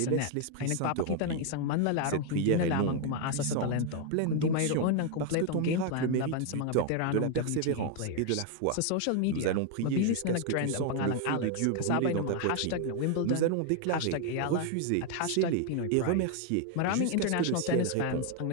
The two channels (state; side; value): different; both; correlation 0.01